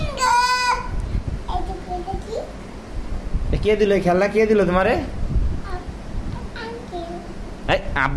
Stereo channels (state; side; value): identical; both; correlation 1.00